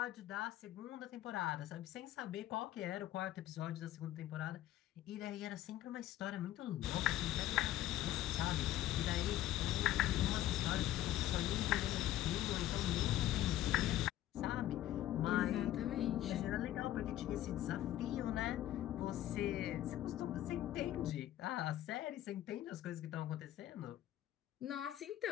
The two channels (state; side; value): quieter; right; 13.5 dB